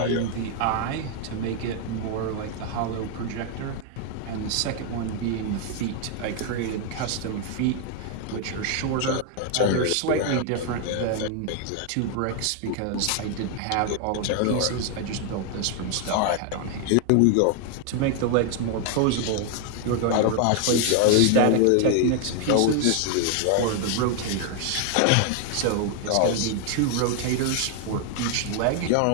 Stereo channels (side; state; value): both; different; correlation 0.00